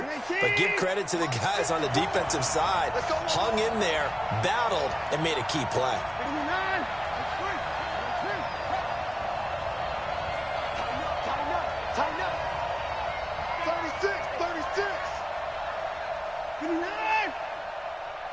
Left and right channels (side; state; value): both; identical; correlation 1.00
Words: but give credit to the guys on the defensive side. Hung in there, battled, and made a key play. Tighten up. 36.